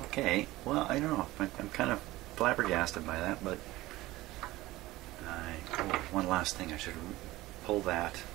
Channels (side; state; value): left; quieter; 18.1 dB